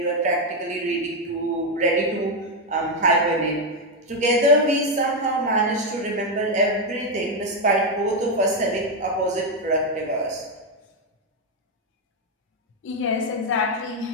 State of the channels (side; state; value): both; normal; correlation 0.04